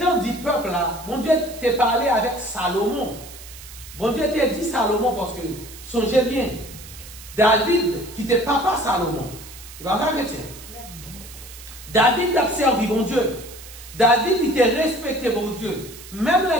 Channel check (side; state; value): right; noise; hiss, 16 dB below the sound